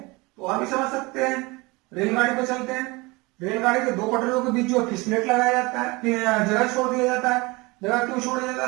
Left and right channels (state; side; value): quieter; left; 24.4 dB